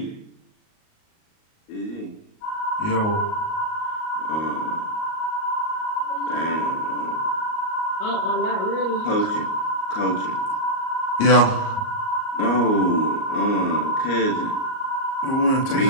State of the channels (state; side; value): late; right; 38 ms